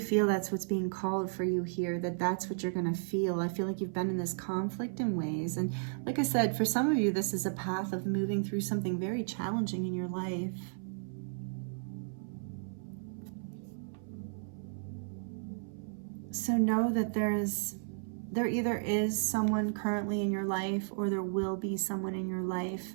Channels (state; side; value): silent; left; 55 dB below the other